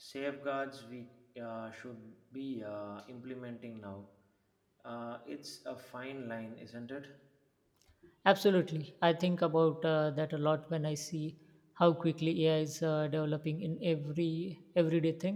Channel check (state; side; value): identical; both; correlation 1.00